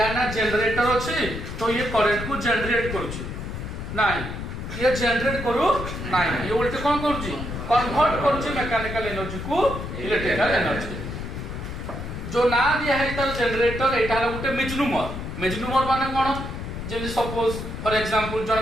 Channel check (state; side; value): noise; left; rumble, 7 dB below the sound